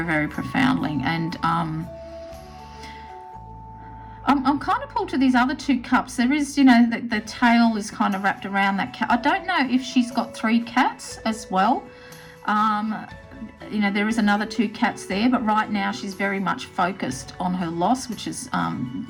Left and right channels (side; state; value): both; identical; correlation 1.00